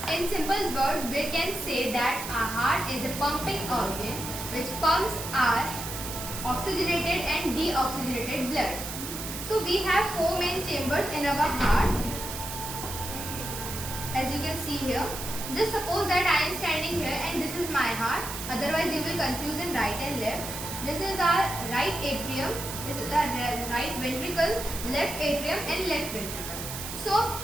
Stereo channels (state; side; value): noise; right; hiss, 7 dB below the sound